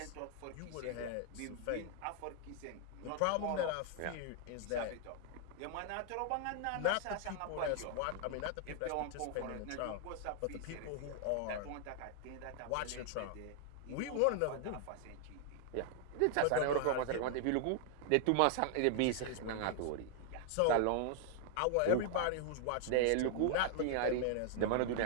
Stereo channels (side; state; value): both; different; correlation 0.00